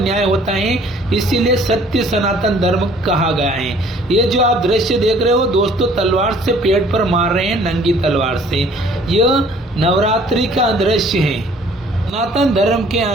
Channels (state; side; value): normal; both; correlation 0.55